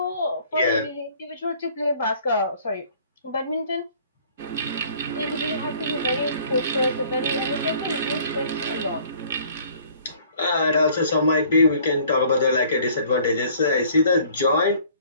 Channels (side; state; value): both; inverted; correlation -0.55